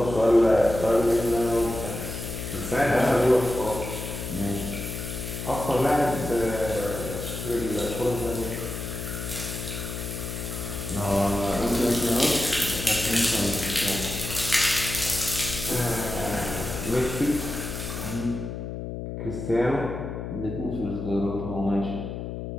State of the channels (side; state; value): left; noise; hum, 6 dB below the sound